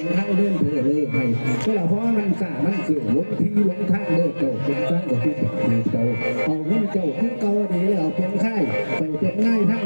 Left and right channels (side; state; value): both; inverted; correlation -1.00